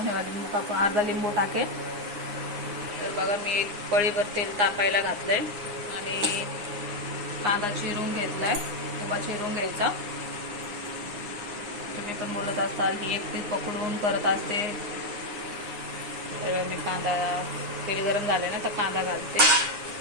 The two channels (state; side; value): late; left; 9.7 ms